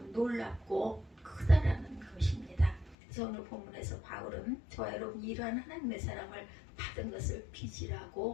놀랍고 크다라는 것입니다. 그래서 오늘 본문에서 바울은 저와 여러분이 이러한 하나님의 사랑을 받은 것을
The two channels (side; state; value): right; drops out; at 3.0 s